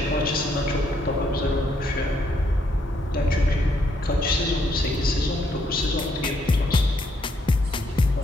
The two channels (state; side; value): normal; both; correlation 0.73